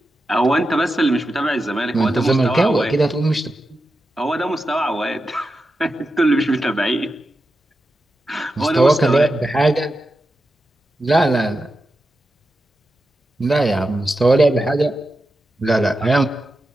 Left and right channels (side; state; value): both; normal; correlation 0.90